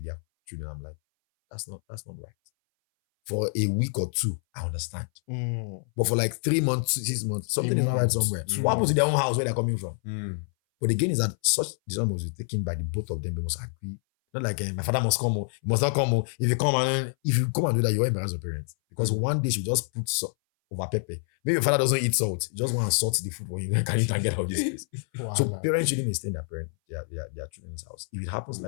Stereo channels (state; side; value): silent; right; 59 dB below the other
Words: their children, I'm like, that's not right. For a week or two, I understand. But for like 3 months, 6 months, something is not right somewhere. So what happens to their own house where they're coming from? But again, is that such decision must be taken by the both of them. They must agree. Not like my father must come. He must not come. If you come and do that, you will embarrass your parents. Because one day she just put over pepper. Maybe your father doesn't eat salt. You just want to salt the food for you. Can you can get out of this place? So Voila. parents shouldn't stay in their children's house. If it happens